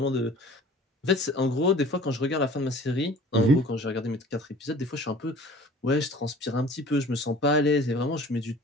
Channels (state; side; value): normal; both; correlation 0.46